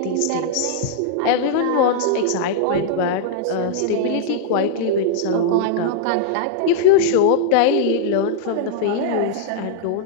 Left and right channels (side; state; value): both; different; correlation -0.01